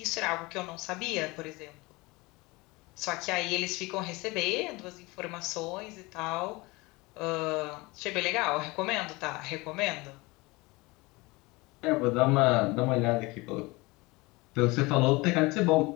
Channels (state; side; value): quieter; right; 23.6 dB